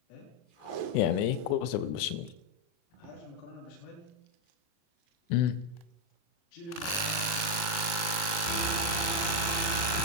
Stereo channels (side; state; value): right; late; 40 ms